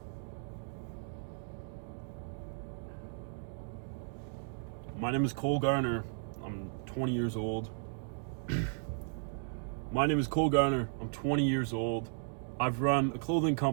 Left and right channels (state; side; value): silent; left; digital silence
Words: My name is Cole Garner. I'm 20 years old. My name is Cole Garner. I'm 20 years old. I've run a clothing